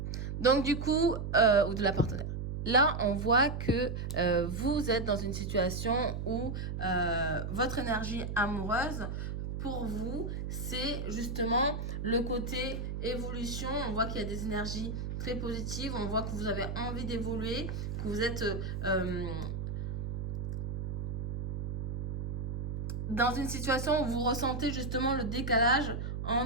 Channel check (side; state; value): right; noise; hum, 4 dB below the sound